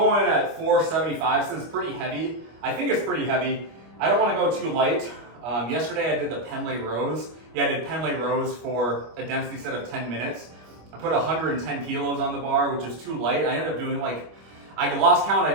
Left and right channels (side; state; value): left; late; 25 ms